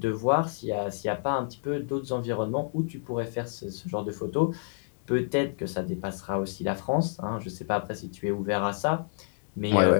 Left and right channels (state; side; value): silent; right; 57 dB below the other